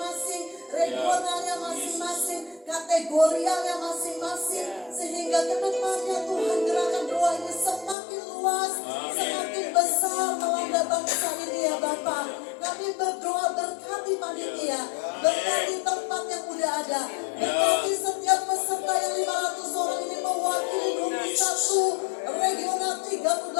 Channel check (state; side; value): drops out; right; at 8.0 s